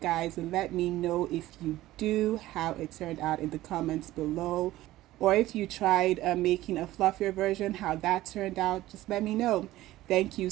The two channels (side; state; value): left; quieter; 15.9 dB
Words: and let me know if you do, how it turned out in the comments below. Or if you tried making a fluffier version, how that turned out, just let me know. Thank you